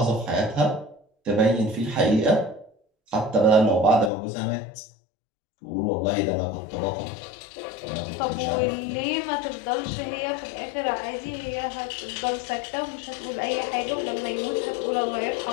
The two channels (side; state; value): right; drops out; at 4.1 s